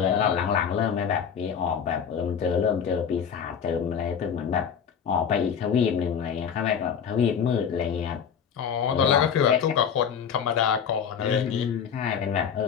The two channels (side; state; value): right; quieter; 7.5 dB